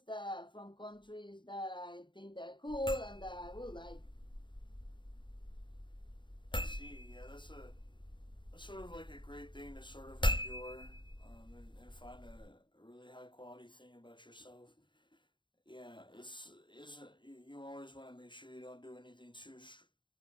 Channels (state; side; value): late; right; 0.23 ms